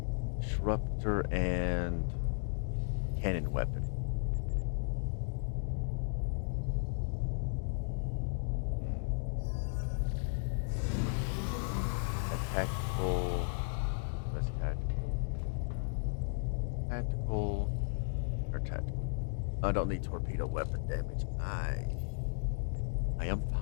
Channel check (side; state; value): right; silent; digital silence